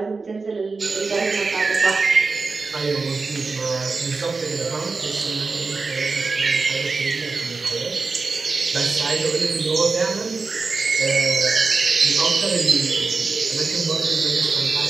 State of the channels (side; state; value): left; quieter; 4.2 dB